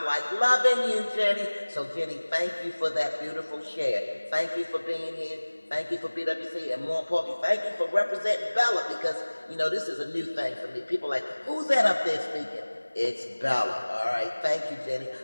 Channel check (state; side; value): inverted; both; correlation -1.00